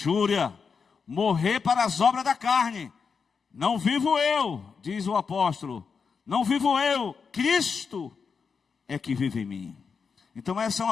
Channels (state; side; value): quieter; right; 5.7 dB